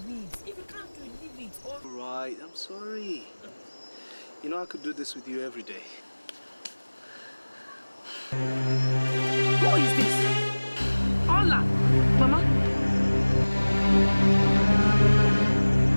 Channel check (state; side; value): inverted; both; correlation -1.00